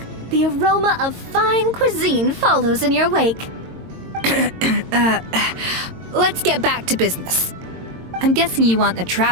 the aroma of fine cuisine follows in your wake. Let's get back to business. I'm guessing you want the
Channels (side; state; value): left; late; 22 ms